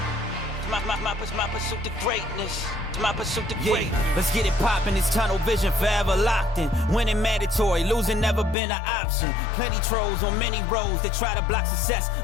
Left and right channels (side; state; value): right; drops out; at 8.6 s